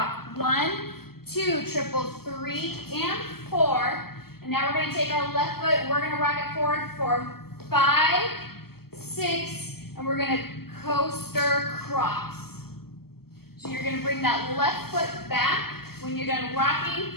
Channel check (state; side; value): late; right; 0.95 ms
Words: 1, 2, triple 3 and 4. And now we're gonna take our left foot, we're gonna rock it forward for 5, 6, and we're gonna coaster cross. So you're gonna bring that left foot back when you're done